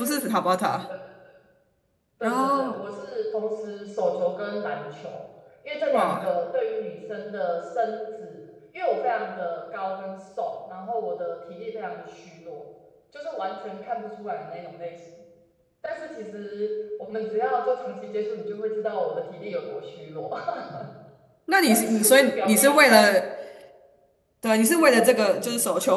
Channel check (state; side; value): identical; both; correlation 1.00